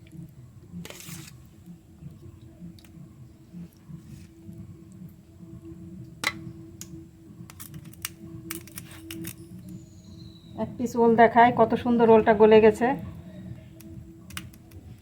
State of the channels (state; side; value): identical; both; correlation 1.00